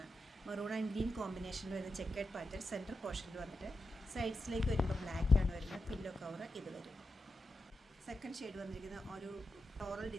മെറൂൺ ആൻഡ് ഗ്രീൻ കോമ്പിനേഷനിൽ വരുന്ന ചെക്കേഡ് പാറ്റേൺ സെൻറ്റർ പോർഷനിൽ വന്നിട്ട് സൈഡ്സിലേക്ക് വരുമ്പോൾ ബ്ലാക്ക് ആണ് വരുന്നത്. പില്ലോ കവർ ഇത് വരും. സെക്കൻഡ് ഷെയ്ഡ് വന്നിരിക്കുന്ന ഒരു ഫ്ലോറൽ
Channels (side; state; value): both; normal; correlation 0.89